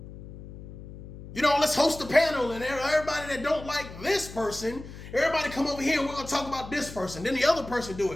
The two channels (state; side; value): noise; left; hum, 14 dB below the sound